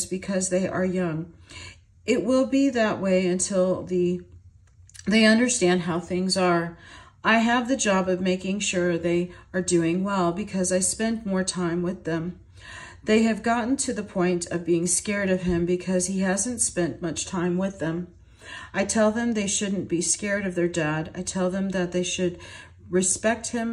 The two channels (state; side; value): identical; both; correlation 1.00